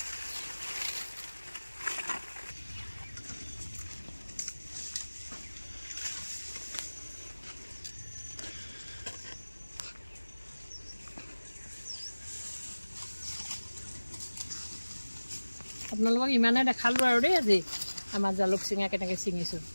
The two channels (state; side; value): inverted; both; correlation -1.00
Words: আপোনালোকক ইমানে দেখালোঁ আৰু দেই আজি আমাৰ জালুক ছিঙা কেনেকৈ ছিঙিছোঁ।